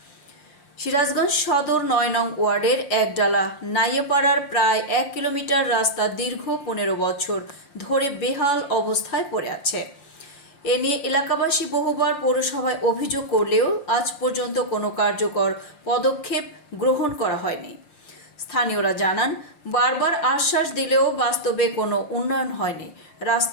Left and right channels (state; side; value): late; right; 5.7 ms